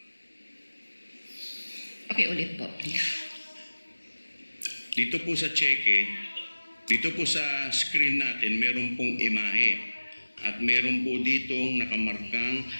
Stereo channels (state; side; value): inverted; both; correlation -1.00